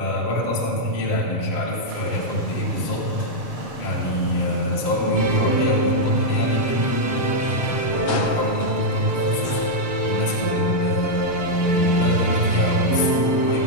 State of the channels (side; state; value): right; late; 6.9 ms